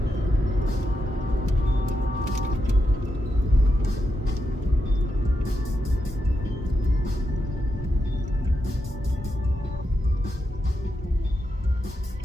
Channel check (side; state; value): both; normal; correlation 0.85